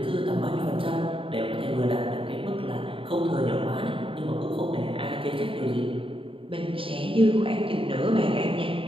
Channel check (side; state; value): left; late; 0.26 ms